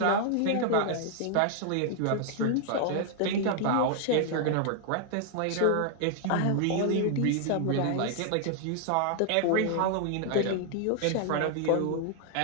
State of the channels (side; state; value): both; different; correlation 0.00